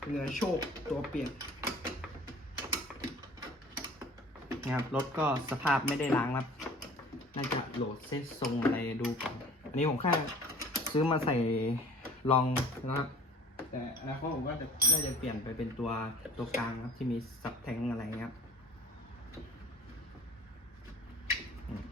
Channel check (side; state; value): both; normal; correlation 0.47